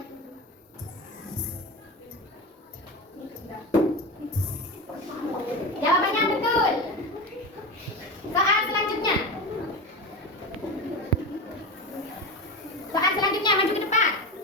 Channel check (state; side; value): normal; both; correlation 0.24